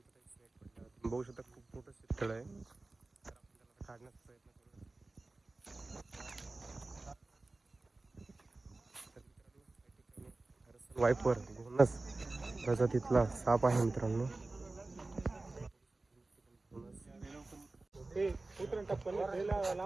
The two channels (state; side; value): quieter; left; 3.2 dB